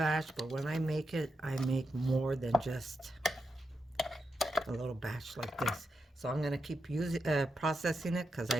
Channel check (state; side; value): normal; both; correlation 0.86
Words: but when I make it, I make more than just a little batch like this. So I'm gonna keep using, processing it because